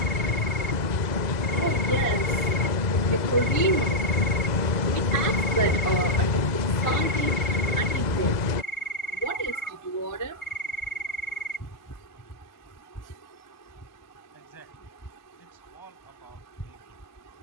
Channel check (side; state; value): right; late; 2.0 ms